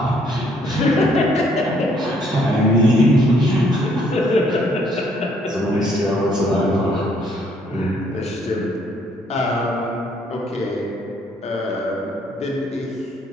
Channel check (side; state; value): both; normal; correlation 0.66